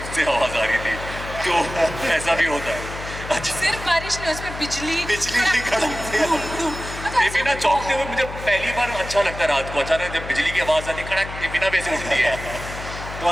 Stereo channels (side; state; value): left; noise; hum, 10 dB below the sound